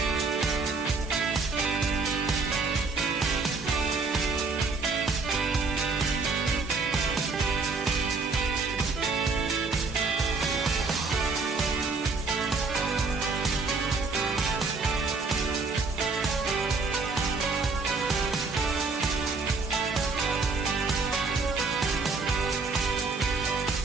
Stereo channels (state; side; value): quieter; left; 4.1 dB